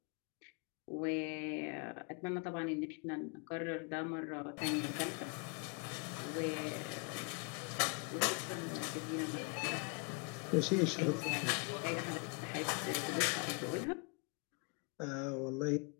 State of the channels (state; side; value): quieter; right; 34.2 dB